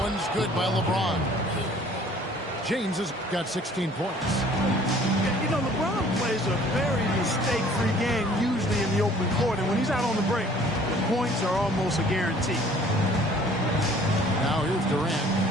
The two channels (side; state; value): both; normal; correlation 0.54